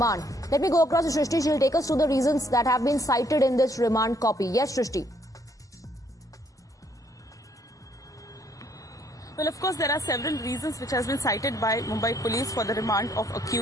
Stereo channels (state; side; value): normal; both; correlation 0.68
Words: Let me go across to Shrishti. She'll take us through the reasons that have been cited in this remand copy. Yes, Shrishti. Well, of course, there are several reasons which has been cited by Mumbai police for the remand of